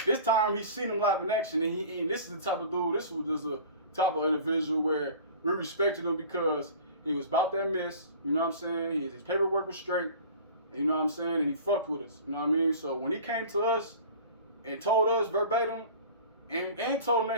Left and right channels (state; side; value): inverted; both; correlation -0.42